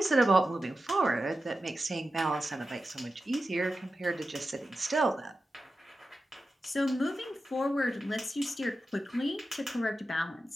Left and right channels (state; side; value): normal; both; correlation 0.92